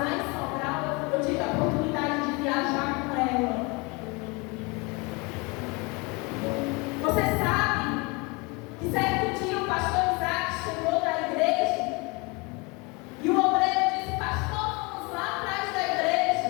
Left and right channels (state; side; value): quieter; right; 28.0 dB